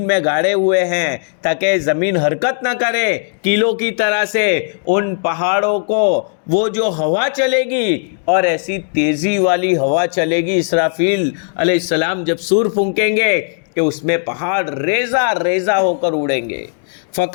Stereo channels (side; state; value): right; silent; digital silence